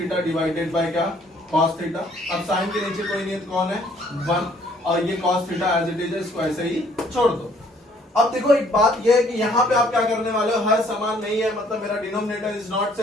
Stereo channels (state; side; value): normal; both; correlation 0.62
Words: डिवाइडेड बाय क्या, कॉस थीटा। अब साइन के नीचे कोई नहीं है, कौन है, 1, और ये cos theta as it is, इसको ऐसे ही छोड़ दो। अब देखो एक बात ये है कि यहाँ पे आप क्या करने वाले हो, हर समान नहीं है, मतलब मेरा denominator is not